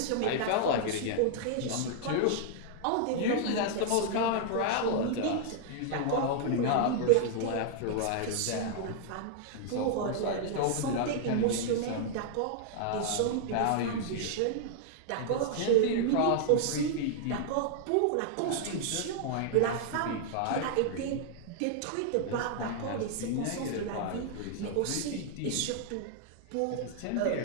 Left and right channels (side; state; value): both; different; correlation -0.01